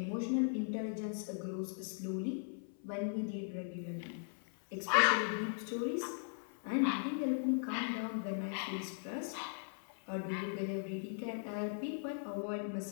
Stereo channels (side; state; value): right; silent; 52 dB below the other